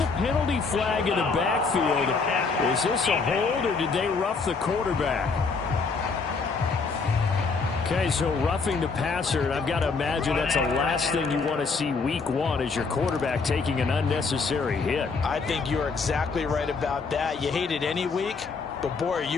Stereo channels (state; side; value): quieter; right; 4.6 dB